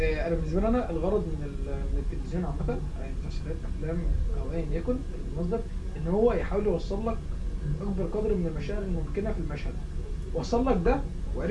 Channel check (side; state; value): both; identical; correlation 1.00